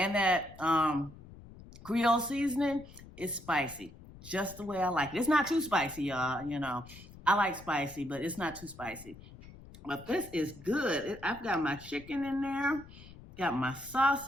that Creole seasoning is spicy. Just the way I like it. It's not too spicy, y'all. You know, I like spicy, but it's not too spicy. But this is good. I've got my chicken in there. Got my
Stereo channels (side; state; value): left; noise; rumble, 18 dB below the sound